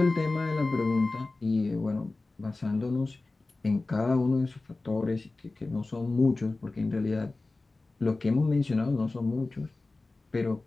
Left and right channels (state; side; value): quieter; right; 3.3 dB